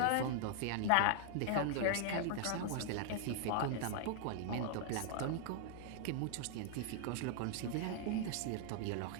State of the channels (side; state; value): both; different; correlation 0.00